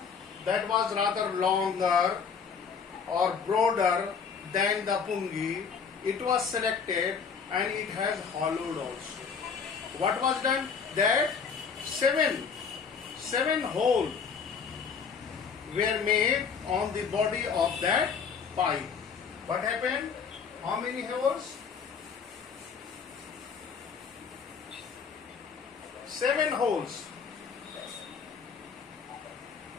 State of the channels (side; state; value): right; quieter; 6.1 dB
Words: that was rather longer or broader than the Pungi, it was selected and it has hollowed also. What was done? That seven holes were made on the body of that pipe. What happened? How many holes? 7 holes.